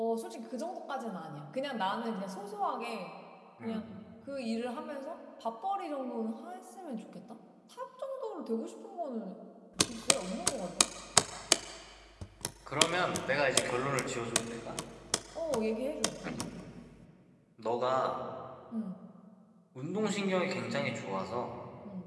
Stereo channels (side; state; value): both; identical; correlation 1.00